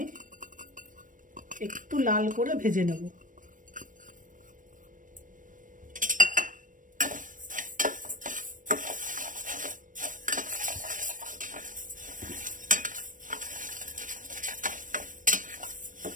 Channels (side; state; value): left; late; 0.38 ms